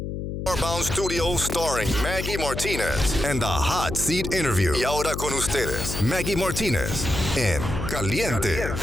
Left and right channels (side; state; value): left; noise; hum, 5 dB below the sound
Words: Starbound Studios starring Maggy Martinez and the Hot Seat Interview. Y ahora con ustedes, Maggy Martinez en Caliente.